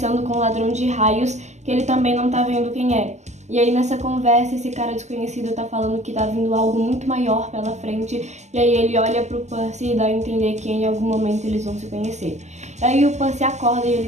com um ladrão de raios, que ele também não tá vendo quem é. E aí nessa conversa esse cara desconhecido tá falando que tá vindo algo muito maior pela frente, e aí ele olha pro Percy e dá a entender que em algum momento eles vão se conhecer. E aí o Percy acorda e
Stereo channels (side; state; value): left; late; 0.33 ms